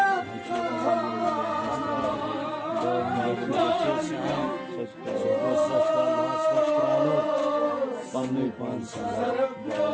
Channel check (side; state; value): both; identical; correlation 1.00